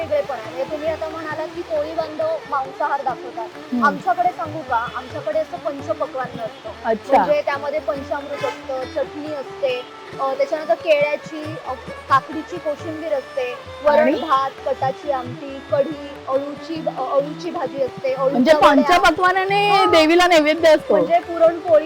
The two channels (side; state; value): both; identical; correlation 1.00